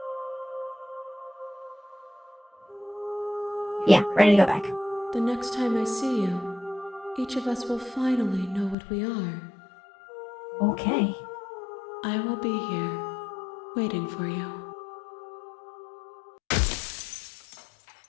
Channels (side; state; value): right; drops out; at 8.8 s